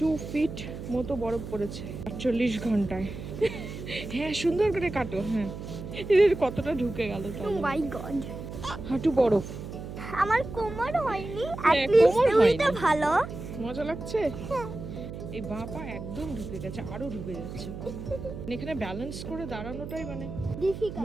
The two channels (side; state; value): right; noise; hum, 9 dB below the sound